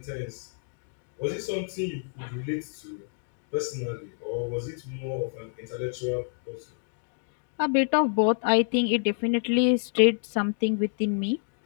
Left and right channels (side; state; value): right; silent; 59 dB below the other